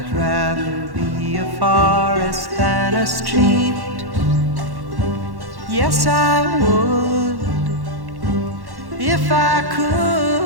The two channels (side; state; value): left; late; 1.1 ms